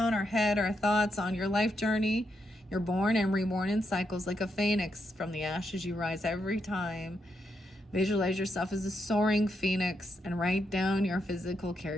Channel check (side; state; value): both; normal; correlation 0.81